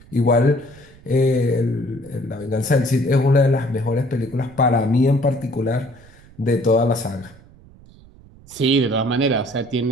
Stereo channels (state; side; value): noise; right; rumble, 24 dB below the sound